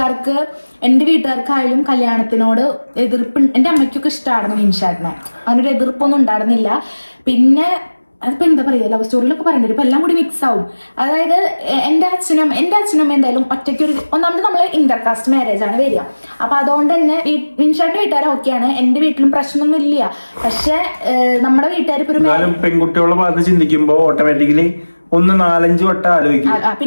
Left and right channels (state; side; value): inverted; both; correlation -1.00